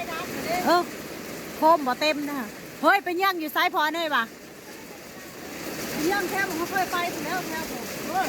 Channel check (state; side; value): identical; both; correlation 1.00